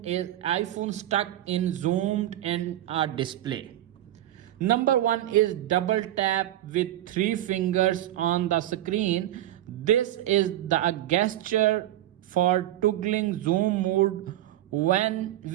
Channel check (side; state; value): left; quieter; 13.6 dB